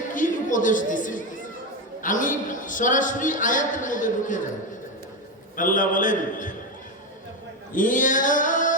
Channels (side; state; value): both; normal; correlation 0.12